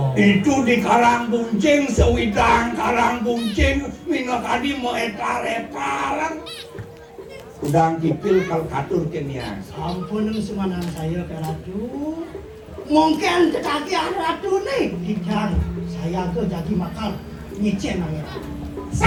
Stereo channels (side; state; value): both; identical; correlation 1.00